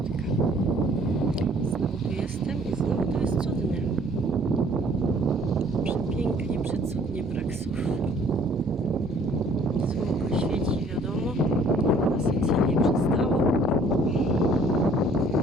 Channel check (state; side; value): normal; both; correlation 0.57